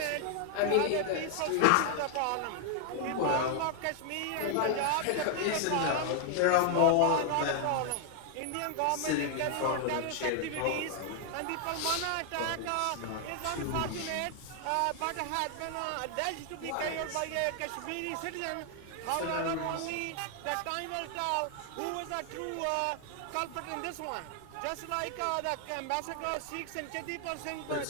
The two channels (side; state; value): both; different; correlation 0.00